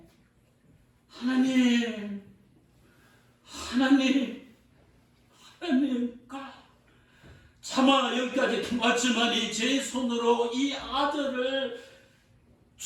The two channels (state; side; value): identical; both; correlation 1.00